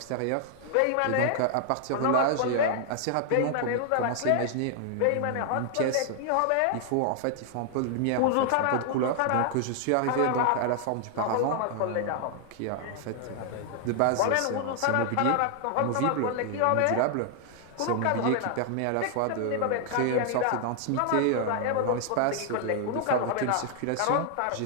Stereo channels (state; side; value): different; both; correlation 0.00